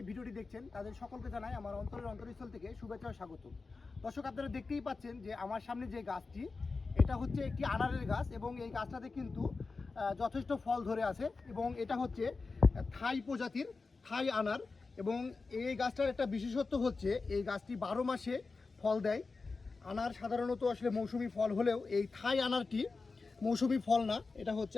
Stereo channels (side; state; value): right; quieter; 4.1 dB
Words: ভিডিওটি দেখছেন তাদের সকলকে জানাই আমার অন্তরস্থল থেকে শুভেচ্ছা ও স্বাগত। দর্শক, আপনারা দেখতেই পাচ্ছেন যে আমার সামনে যে গাছটি, এটা হচ্ছে একটি আনারের গাছ এবং এই গাছটাতে কিন্তু যথেষ্ট ফল ধরে আছে এবং এটা হচ্ছে থাই প্রজাতির থাই আনার। এবং এই গাছটার একটা বিশেষত্ব হচ্ছে এই গাছটি 12 মাসে ফল দেয়। আনার সাধারণত আসলে মৌসুমি ফল হলেও এই থাই আনারটি মৌসুমি ফল না, এটা হচ্ছে